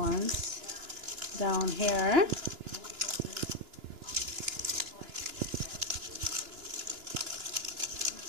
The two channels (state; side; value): late; left; 2.9 ms